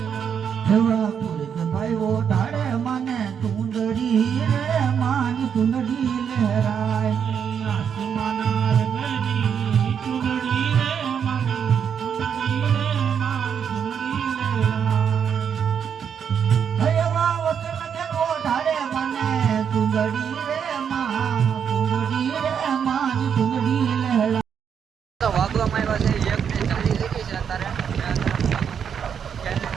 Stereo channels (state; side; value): quieter; left; 7.6 dB